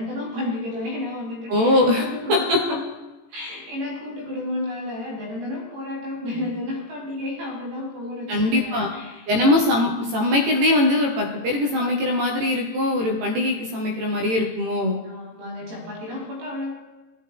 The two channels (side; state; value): left; late; 18 ms